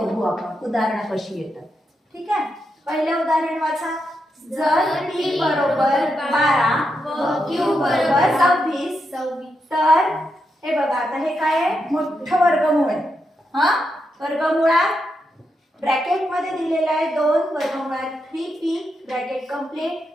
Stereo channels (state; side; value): normal; both; correlation 0.84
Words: आपण. उदाहरणं कशी येतात. ठीक आहे. पहिले उदाहरण वाचा. जर t बरोबर 12 व q बरोबर 26 तर हे बघा आता हे काय आहे? मोठं वर्गमूळ आहे. हा वर्गमुळात ब्रॅकेट मध्ये दिलेला आहे 2 वर्गमुळात 3p ब्रॅकेट कंप्लीट